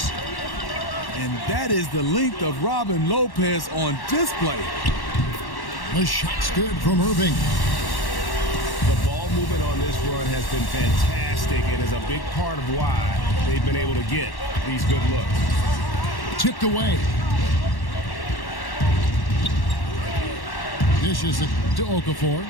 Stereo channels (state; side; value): late; right; 1.1 ms